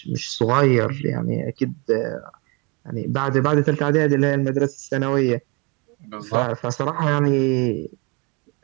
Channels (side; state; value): left; quieter; 29.5 dB